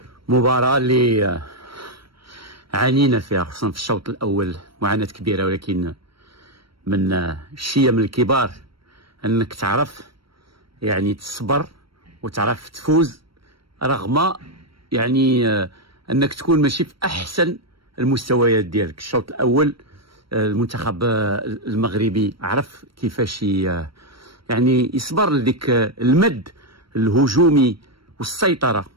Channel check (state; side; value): late; left; 0.74 ms